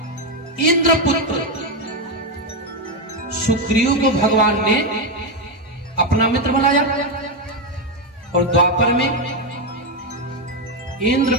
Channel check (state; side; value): normal; both; correlation 0.06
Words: इंद्रपुत्र सुग्रीव को भगवान ने अपना मित्र बनाया, और द्वापर में